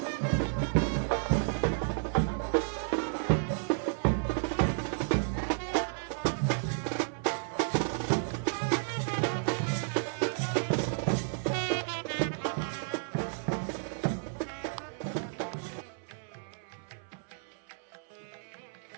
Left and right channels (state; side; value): silent; left; 56 dB below the other